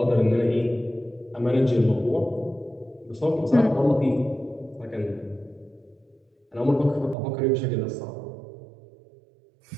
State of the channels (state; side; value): drops out; left; at 7.2 s